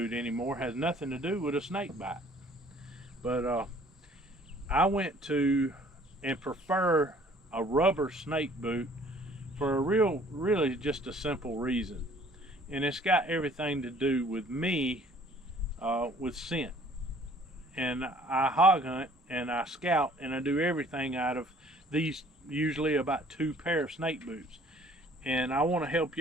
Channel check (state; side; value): normal; both; correlation 0.56